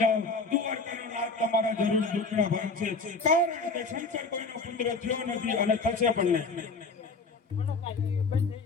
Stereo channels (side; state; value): right; quieter; 3.9 dB